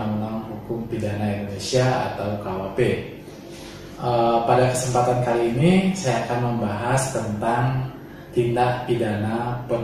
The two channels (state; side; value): identical; both; correlation 1.00